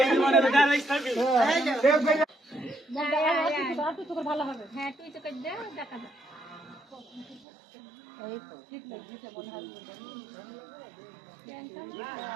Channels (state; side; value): drops out; left; at 7.4 s